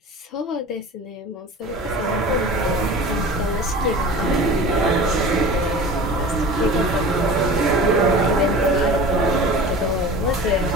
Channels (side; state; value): both; normal; correlation 0.38